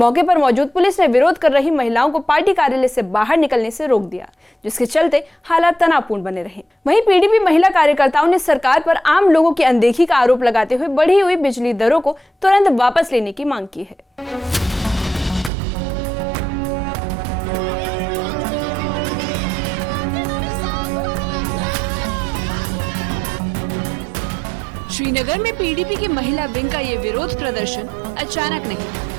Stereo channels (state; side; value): drops out; left; at 15.5 s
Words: पर मौजूद पुलिस ने विरोध कर रही महिलाओं को पार्टी कार्यालय से बाहर निकलने से रोक दिया, जिसके चलते हालात तनावपूर्ण बने रहे। वहीं पीडीपी महिला कार्यकर्ताओं ने सरकार पर आम लोगों की अनदेखी का आरोप लगाते हुए बढ़ी हुई बिजली दरों को तुरंत वापस लेने की मांग की है। श्रीनगर में पीडीपी की महिला विंग का ये विरोध प्रदर्शन अचानक